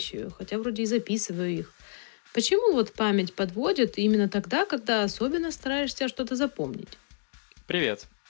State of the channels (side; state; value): right; silent; digital silence